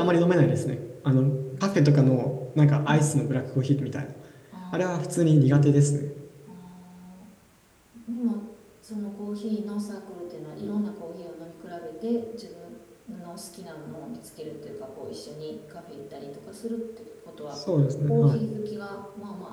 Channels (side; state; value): both; identical; correlation 1.00